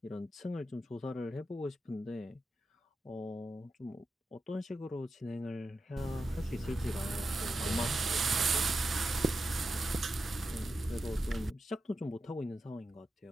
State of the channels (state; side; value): normal; both; correlation 0.89